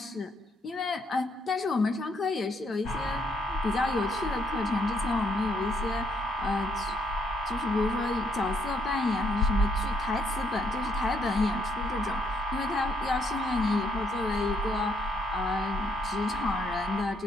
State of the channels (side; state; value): both; normal; correlation 0.73